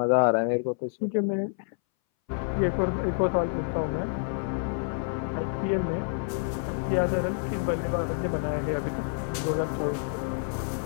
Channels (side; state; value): right; silent; 59 dB below the other